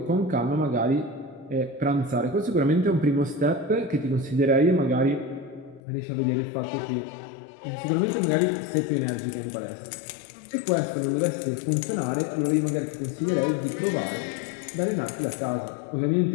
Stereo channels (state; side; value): drops out; right; at 5.8 s